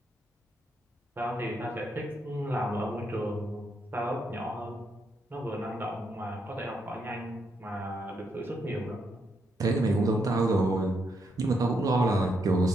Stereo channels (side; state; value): both; normal; correlation 0.79